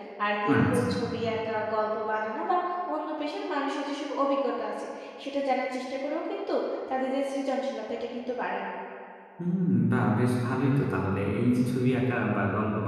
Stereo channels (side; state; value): both; identical; correlation 1.00